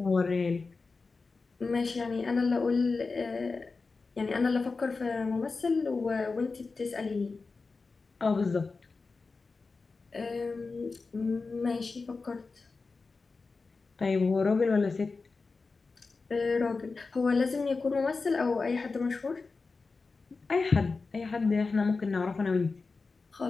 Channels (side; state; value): right; quieter; 4.2 dB